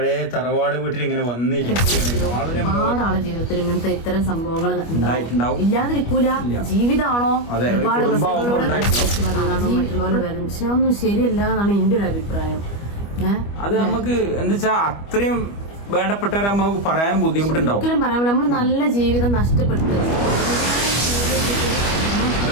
തറവാട് വീട്ടിൽ ഇങ്ങനെ വന്നിരിക്കുകയാണ്. ഒരുപാട് ആളെ ജീവിതത്തിൽ ഇങ്ങനത്തെ ഇത്തരം സംഭവങ്ങൾ ഇല്ലാതിരിക്കൂല. ജീവിതമാണോ ഒരുപാട് മറ്റുള്ളവരെ വരും, പക്ഷെ ഒന്നും ശരിയല്ല എന്നാണ് എന്റെ ഒരു അഭിപ്രായം. അത് നമുക്ക് എന്താ വെച്ചാ അത്രയും വേണ്ടപ്പെട്ടവരെ നമുക്ക് പറയാൻ ബുദ്ധിമുട്ടുണ്ടാവും. ഒരിക്കലും പറയാൻ നമ്മൾ നല്ല ജീവിതം നഷ്ടപ്പെടുത്തുക.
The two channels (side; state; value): right; late; 25 ms